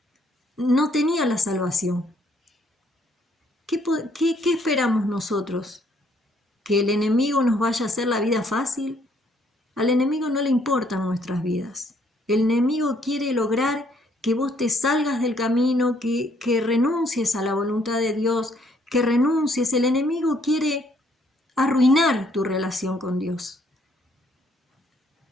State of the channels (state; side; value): normal; both; correlation 0.67